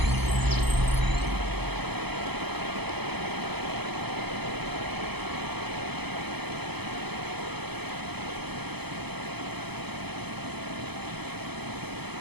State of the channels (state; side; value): late; left; 0.97 ms